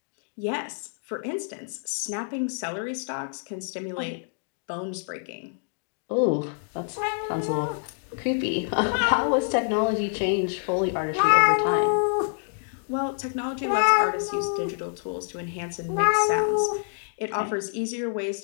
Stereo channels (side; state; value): right; silent; digital silence